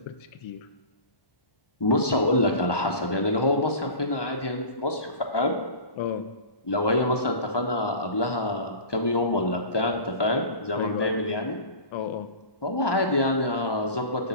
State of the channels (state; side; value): late; right; 1.2 ms